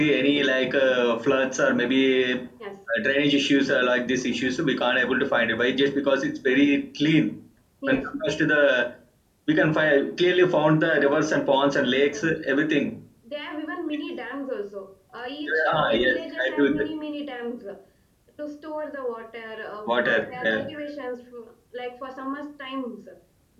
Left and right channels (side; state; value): both; identical; correlation 1.00